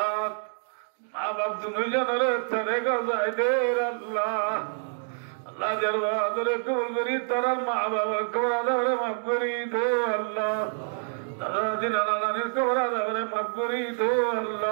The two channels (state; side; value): silent; left; digital silence